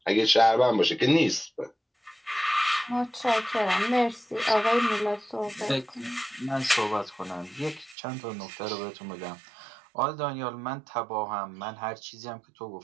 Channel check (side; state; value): left; drops out; at 8.0 s